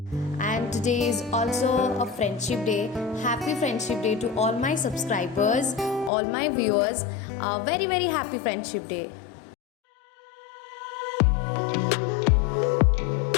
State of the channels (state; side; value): drops out; right; at 6.1 s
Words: And today is also a friendship day. Happy friendship day to all my subscribers, all my viewers. Very very happy friendship day.